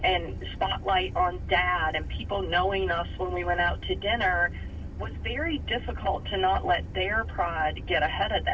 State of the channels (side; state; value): both; identical; correlation 1.00